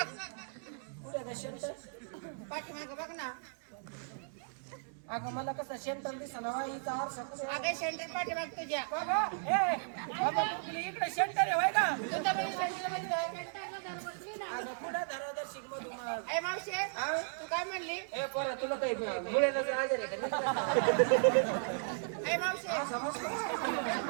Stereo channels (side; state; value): left; silent; digital silence